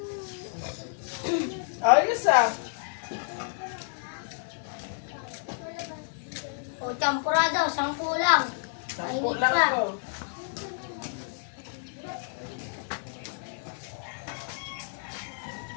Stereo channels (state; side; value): silent; right; 58 dB below the other